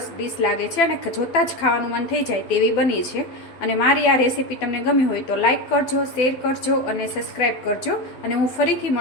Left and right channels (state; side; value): late; right; 12 ms